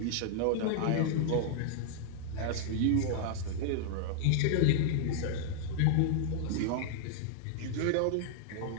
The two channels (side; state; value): both; different; correlation 0.00